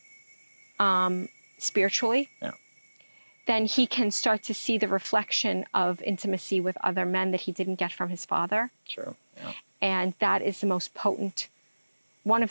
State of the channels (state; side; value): inverted; both; correlation -1.00